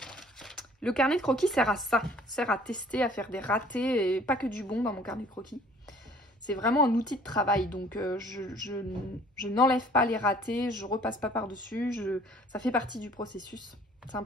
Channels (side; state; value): both; normal; correlation 0.54